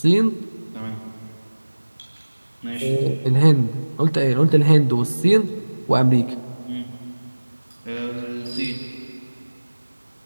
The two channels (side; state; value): both; inverted; correlation -1.00